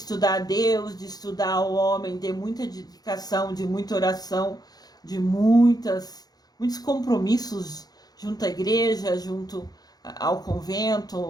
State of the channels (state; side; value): late; right; 0.19 ms